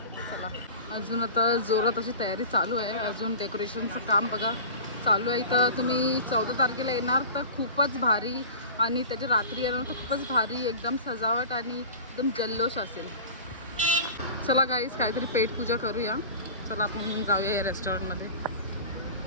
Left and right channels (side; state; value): both; inverted; correlation -0.36